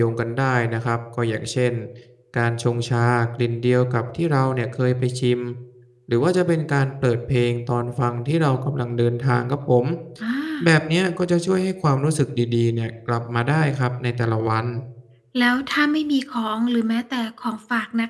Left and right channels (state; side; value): identical; both; correlation 1.00